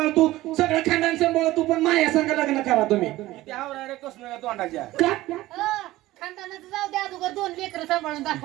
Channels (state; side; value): quieter; left; 17.1 dB